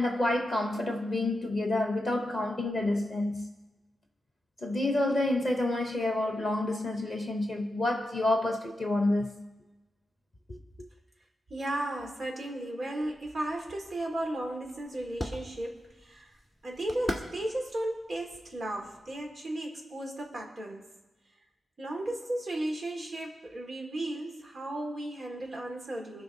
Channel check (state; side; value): normal; both; correlation 0.88